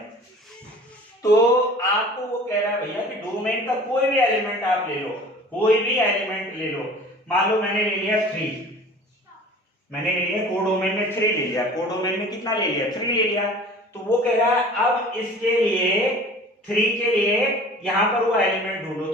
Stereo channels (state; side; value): normal; both; correlation 0.44